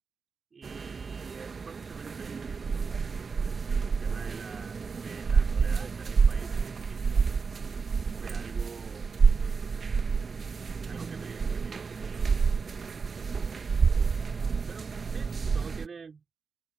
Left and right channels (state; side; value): quieter; left; 5.1 dB